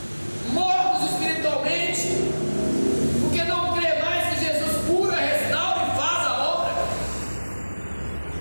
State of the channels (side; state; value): both; inverted; correlation -1.00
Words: mortos espiritualmente, porque não crê mais que Jesus cura, restaura e faz a obra.